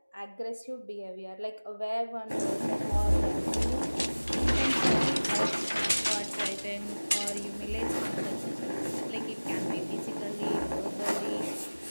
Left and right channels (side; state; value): both; inverted; correlation -1.00